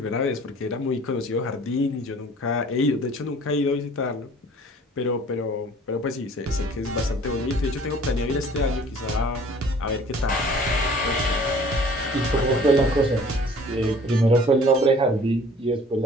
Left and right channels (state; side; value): normal; both; correlation 0.51